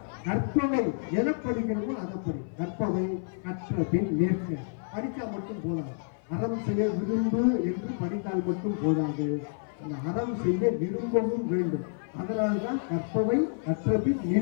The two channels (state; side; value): silent; right; 56 dB below the other